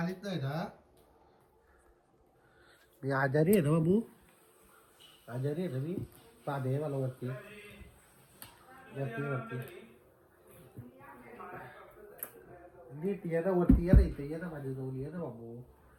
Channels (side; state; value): both; identical; correlation 1.00